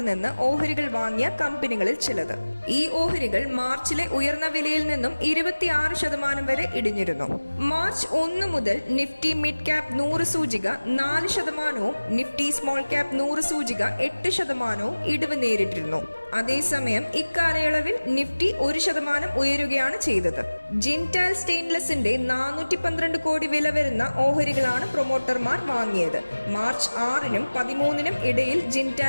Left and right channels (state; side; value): inverted; both; correlation -1.00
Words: നിന്ന് ഓഹരികൾ വാങ്ങിയ കമ്പനികളിൽ ചിലത്. ഈ ഓഹരികൾ മാർച്ചിലെ ഉയർന്ന വിലയിൽ നിന്നും 26% വരെ ഇടിഞ്ഞിരുന്നു. മാർച്ച് 1 മുതൽ നിഫ്റ്റി മിഡ് ക്യാപ് 100 സൂചിക 4%, നിഫ്റ്റി സ്മോൾ ക്യാപ് 100 സൂചിക 8% ഇടിവ് നേരിട്ടിരുന്നു. അതേസമയം ഇക്കാലയളവിൽ നിഫ്റ്റി 1% ഉയരുകയാണ് ചെയ്തത്. ജിൻഡാൽ സ്റ്റെയിൻലെസിന്റെ 412 കോടി വില വരുന്ന ഓഹരികളാണ് പ്രൊമോട്ടർമാർ വാങ്ങിയത്. മാർച്ച് 6-നും 13-നും ഇടയിൽ